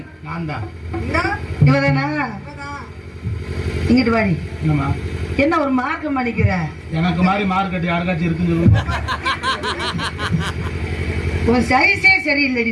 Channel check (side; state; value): both; identical; correlation 1.00